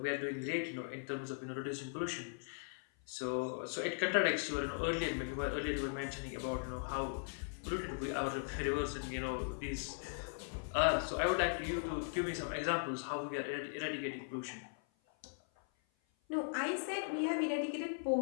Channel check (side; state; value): right; silent; 52 dB below the other